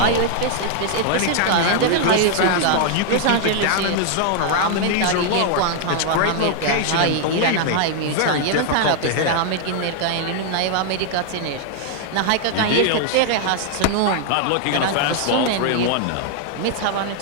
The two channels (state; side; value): different; both; correlation 0.00